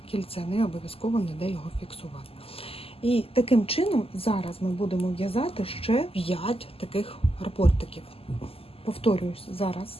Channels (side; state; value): right; late; 0.28 ms